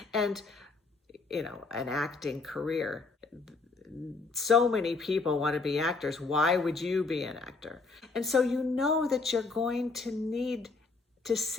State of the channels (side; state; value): right; quieter; 3.9 dB